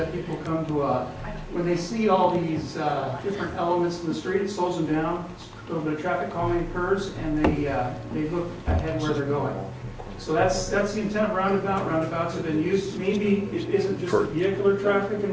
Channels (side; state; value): both; identical; correlation 1.00